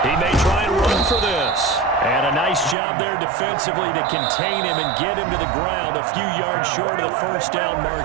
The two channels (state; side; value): drops out; left; at 2.8 s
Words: He may try and run for this. And a nice job there defensively to contain him and get him to the ground a few yards short of the first down